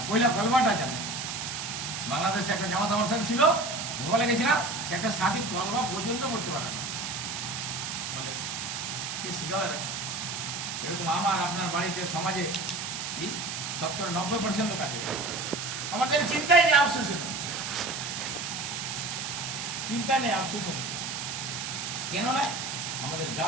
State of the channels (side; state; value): right; noise; hiss, 5 dB below the sound